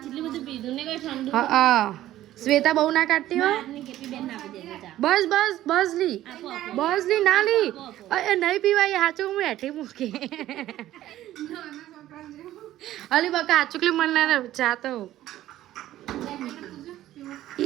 શ્વેતા બહુ ના કાઢતી હોય. બસ બસ બસ લી. બસ લી ના લી. નહીં પીવાય હાચું. હું હેઠી મૂકી અલી બકા હાચુકલી મને ચા તો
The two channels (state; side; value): quieter; left; 13.9 dB